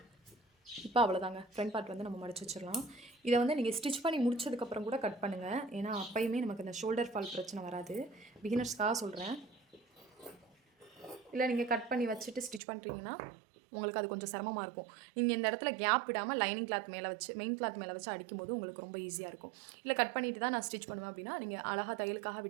இப்போ அவ்வளோதாங்க, ஃப்ரண்ட் பார்ட் வந்து நம்ம மடிச்சு வச்சிடலாம். இதை வந்து நீங்கள் ஸ்டிச் பண்ணி முடிச்சதுக்கப்புறம் கூட கட் பண்ணுங்கள். ஏன்னா அப்பயுமே நமக்கு இந்த ஷோல்டர் ஃபால் பிரச்சனை வராது. பிகினர்ஸ்க்காக சொல்கிறேன். இல்லை நீங்கள் கட் பண்ணி வச்சுட்டு ஸ்டிச் பண்ணுறீங்கன்னா உங்களுக்கு அது கொஞ்சம் சிரமமாக இருக்கும். நீங்கள் இந்த இடத்துல கேப் விடாமல் லைனிங் கிளாத் மேலே வச்சு மெயின் கிளாத் மேலே வச்சு அடிக்கும்போது உங்களுக்கு ரொம்ப ஈஸியாக இருக்கும். இல்லை கட் பண்ணிட்டு தான் நான் ஸ்டிச் பண்ணுவேன் அப்படின்னா நீங்கள் அழகாக தையலுக்காக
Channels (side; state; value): left; drops out; at 12.6 s